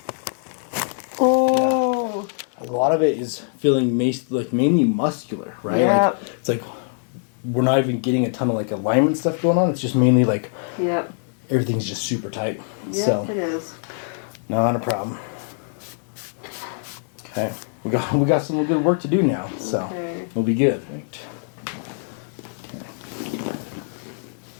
Oh. Yeah. A lot of it is feeling mainly muscular, right? Yeah. Like, it's like we're not even getting a ton of like alignment stuff going on. It's just mainly like everything's just super tight. Yeah, so, it is. Not a problem. Okay. We got some good work to do now, so we'll be good. Right. Okay.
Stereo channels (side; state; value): right; silent; 63 dB below the other